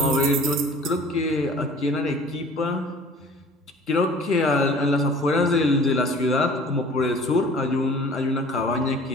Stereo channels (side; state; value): both; normal; correlation 0.48